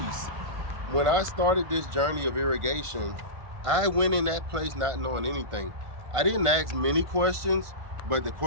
When I started this journey of irrigation, I went in that place not knowing anything. I didn't ask many questions, but the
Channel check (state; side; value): late; left; 1.5 ms